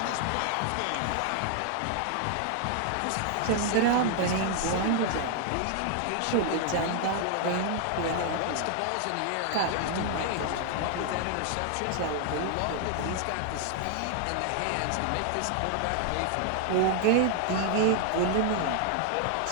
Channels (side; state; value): both; different; correlation 0.00